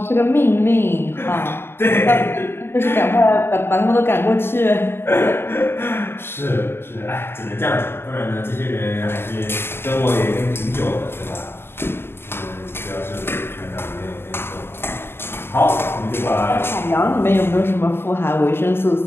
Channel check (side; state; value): right; late; 0.11 ms